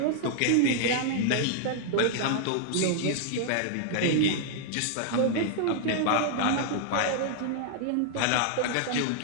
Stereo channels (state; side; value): different; both; correlation -0.01